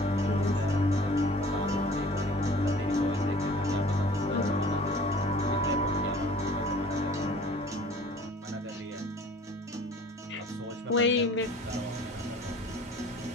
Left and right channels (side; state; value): both; normal; correlation 0.48